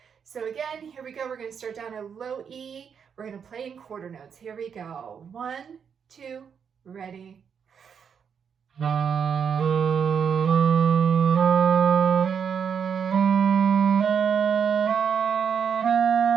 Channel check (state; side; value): quieter; left; 7.1 dB